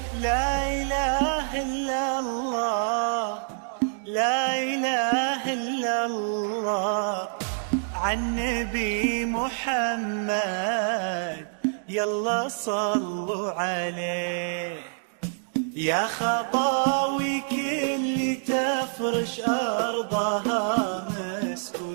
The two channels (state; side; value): silent; left; digital silence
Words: لا إله إلا الله، لا إله إلا الله، عن نبي محمد يلا صلوا عليه. يا خطاوي كل تفرش أرضها مسك